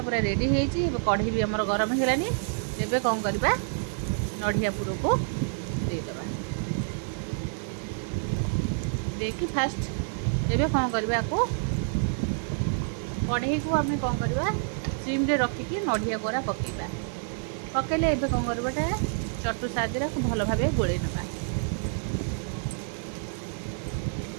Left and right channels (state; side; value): silent; left; digital silence